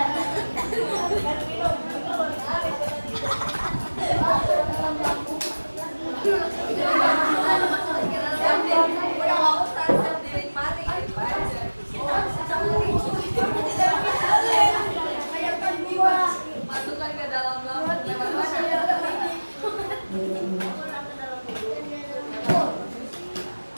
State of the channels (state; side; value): inverted; both; correlation -1.00